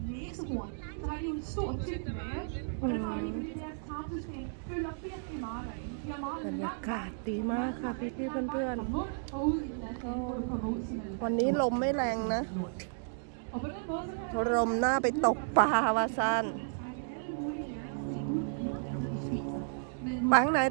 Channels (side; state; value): left; silent; digital silence